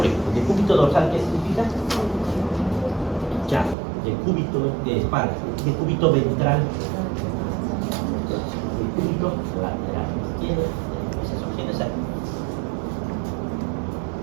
ejemplo. Decúbito dorsal, ¿qué significa? Ya, decúbito de espalda, decúbito ventral, decúbito lateral izquierdo, esas opciones hay.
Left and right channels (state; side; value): drops out; left; at 3.8 s